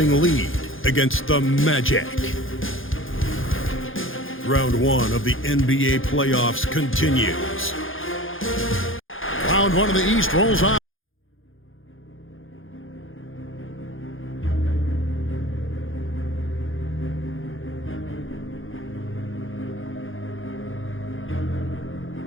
lead against the Magic. Round 1 of the NBA playoffs continues. Round 1 of the East rolls on.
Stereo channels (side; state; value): right; late; 0.59 ms